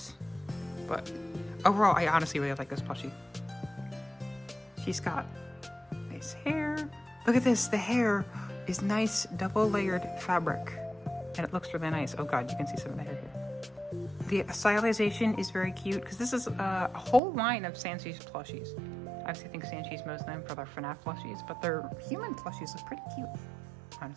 But overall, I honestly really like this plushie. She's got nice hair. Look at this, the hair is nice double layered fabric. And it looks really nice. Oh god, you can see some of the hair here. The stylization is very cute because this is a whole line of Sanchi's plushies. I obviously think Sanchi's most known for their Fnaf plushies, but their human plushies look pretty cute,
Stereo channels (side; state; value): left; drops out; at 17.2 s